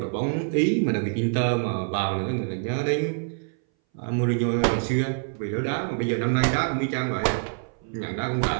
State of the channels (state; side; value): silent; left; 60 dB below the other